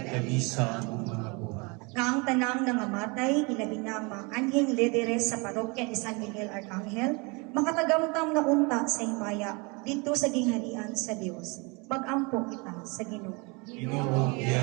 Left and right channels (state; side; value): quieter; left; 29.4 dB